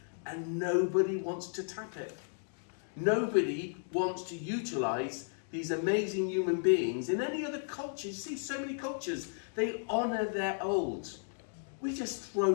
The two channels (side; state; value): right; silent; digital silence